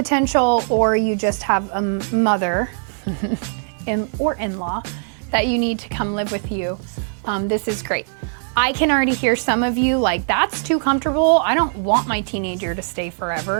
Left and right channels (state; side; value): silent; left; 65 dB below the other